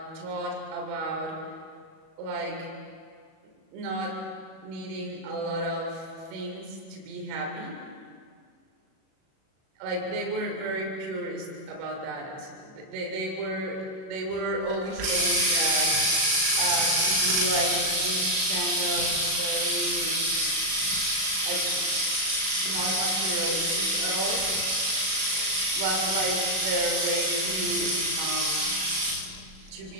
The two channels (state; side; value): late; left; 37 ms